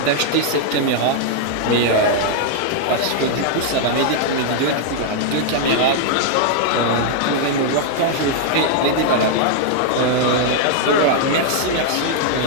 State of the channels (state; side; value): different; both; correlation 0.00